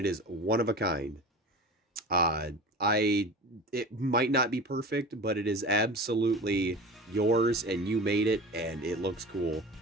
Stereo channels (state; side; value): normal; both; correlation 0.34